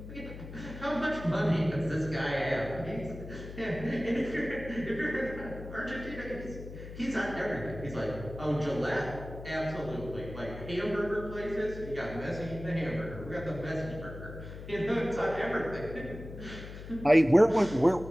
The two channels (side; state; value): left; noise; hum, 12 dB below the sound